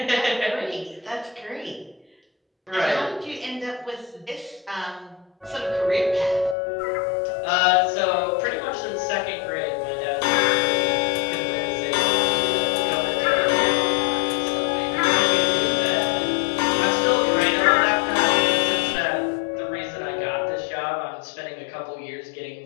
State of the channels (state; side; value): drops out; right; at 6.6 s